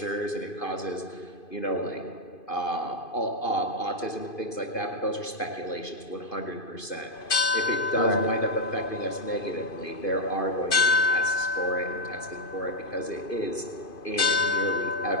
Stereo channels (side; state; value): right; late; 2.5 ms